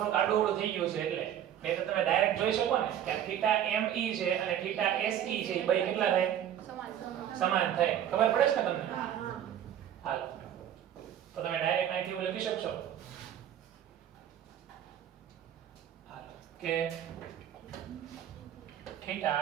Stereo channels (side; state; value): left; quieter; 10.4 dB